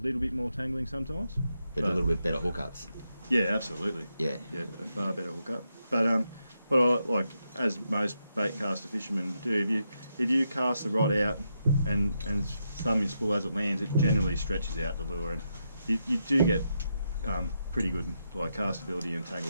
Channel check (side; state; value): both; inverted; correlation -0.83